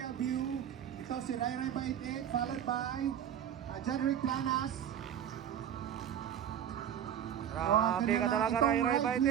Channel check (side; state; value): left; quieter; 9.6 dB